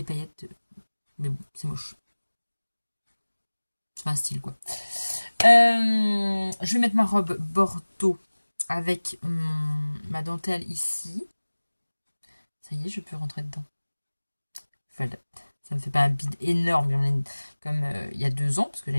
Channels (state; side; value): inverted; both; correlation -1.00